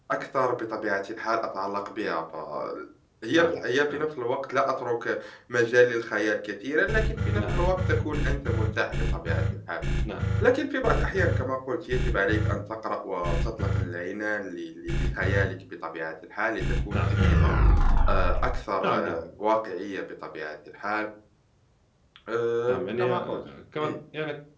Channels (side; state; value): both; identical; correlation 1.00